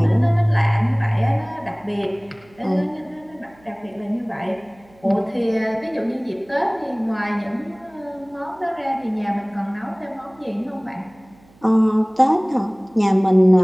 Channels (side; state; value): right; noise; hum, 29 dB below the sound